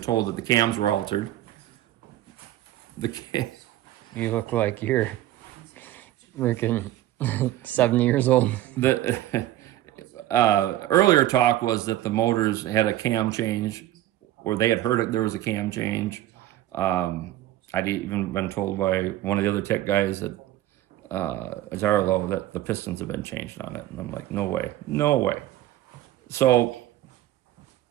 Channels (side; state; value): left; quieter; 14.2 dB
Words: that the cams were altered. You look like you're freaking 70 years old. The earlier talk was that the motors had a cam change, or they had heard it, there was a cam change. I'd even been told by one of the other tech guys at Zarlo that the pistons have been changed on it. And I'm like, no way. So